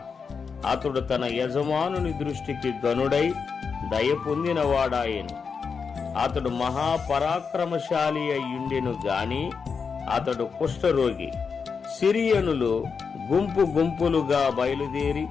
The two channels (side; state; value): right; quieter; 5.6 dB